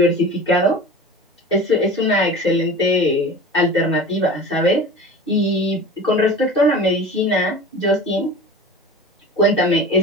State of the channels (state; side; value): normal; both; correlation 0.36